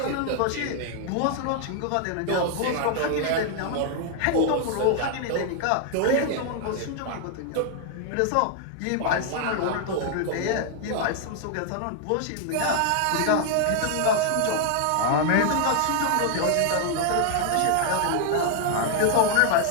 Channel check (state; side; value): different; both; correlation 0.00